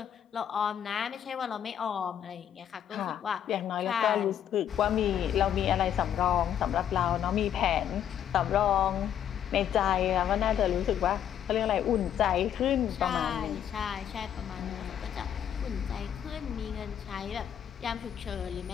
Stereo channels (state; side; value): quieter; right; 9.7 dB